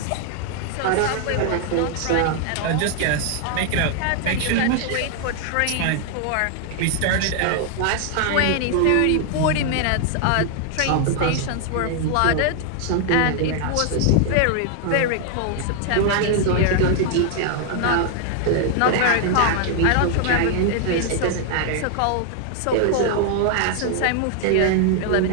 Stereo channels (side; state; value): both; different; correlation 0.00